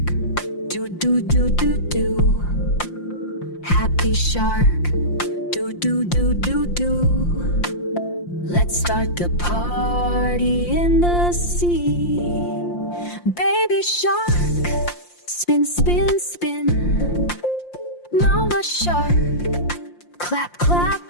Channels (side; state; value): right; late; 5.7 ms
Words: do do do do do. Happy shark, do do do do do. Let's start the party in the sea. Baby shark, spin spin spin. Mama shark, clap clap